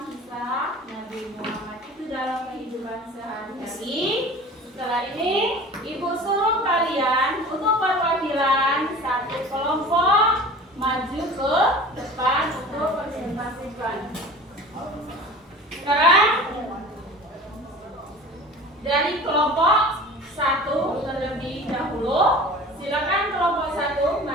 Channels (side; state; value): both; normal; correlation 0.40